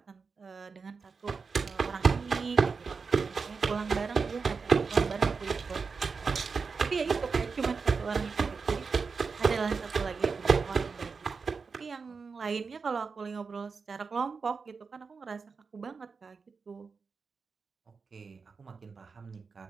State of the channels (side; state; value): left; quieter; 5.0 dB